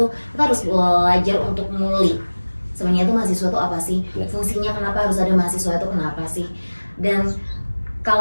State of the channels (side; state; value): both; inverted; correlation -1.00